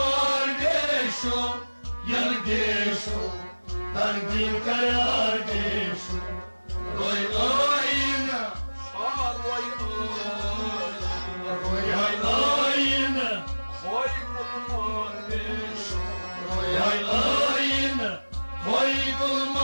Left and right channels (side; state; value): both; inverted; correlation -1.00